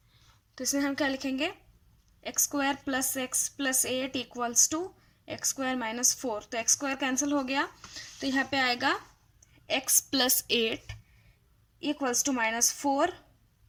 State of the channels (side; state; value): both; identical; correlation 1.00